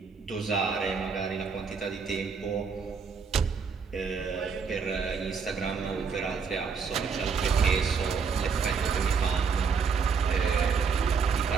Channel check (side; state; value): left; quieter; 5.6 dB